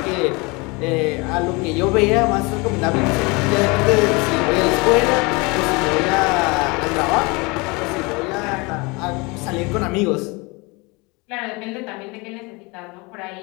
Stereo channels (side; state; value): right; quieter; 27.0 dB